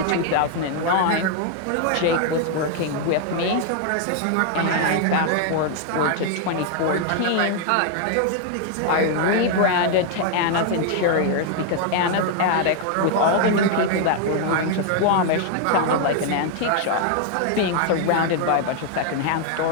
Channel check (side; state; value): both; different; correlation 0.00